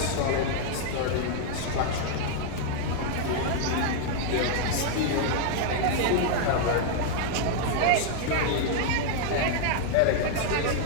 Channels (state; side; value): different; both; correlation 0.00